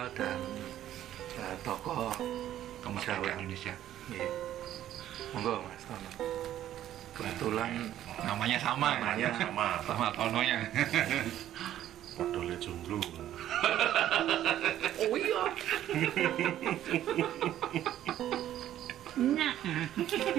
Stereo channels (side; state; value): left; quieter; 12.1 dB